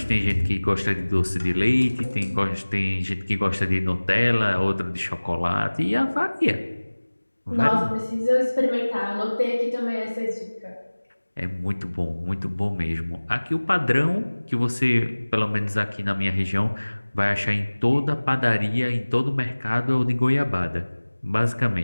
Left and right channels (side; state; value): both; inverted; correlation -1.00